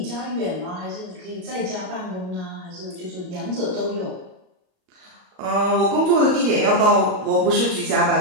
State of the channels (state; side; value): late; left; 38 ms